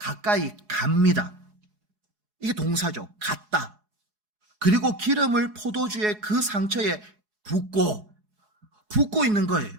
갑니다. 이게 동사죠. 갔다. 그리고 기름을 포도주의 그 상처에 붓고 있는 거예요.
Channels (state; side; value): late; left; 4.8 ms